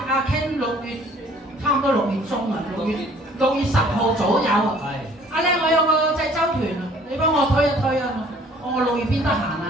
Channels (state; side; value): normal; both; correlation 0.55